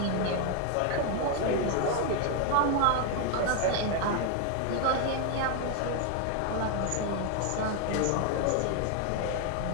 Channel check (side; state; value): both; different; correlation 0.01